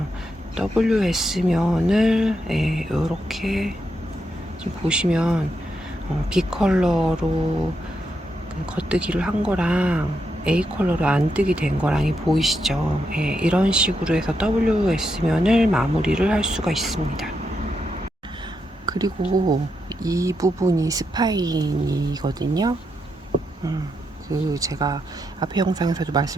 WS면을 이렇게 지금 보시면 B 컬러로 겉뜨기를 한 거랑 A 컬러로 안뜨기 된 거랑이 보이시죠? 이런 식으로 해서 WS면을 마무리를 할 수가 있습니다. 그리고 이 부분이 스파인이거든요. 제가 앞에 영상에서도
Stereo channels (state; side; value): normal; both; correlation 0.83